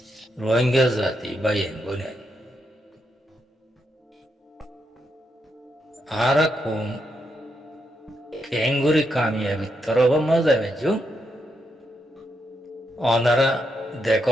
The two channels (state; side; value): normal; both; correlation 0.81